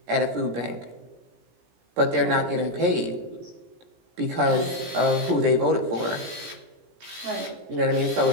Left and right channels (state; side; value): late; left; 17 ms